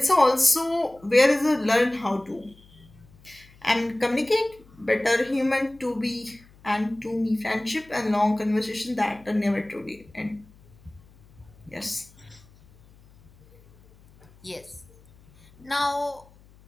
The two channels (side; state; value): left; noise; hum, 27 dB below the sound